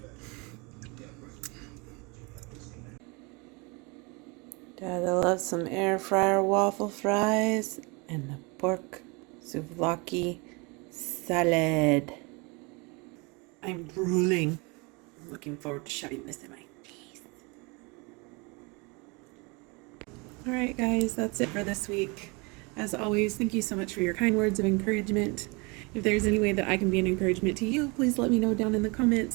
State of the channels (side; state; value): left; quieter; 28.9 dB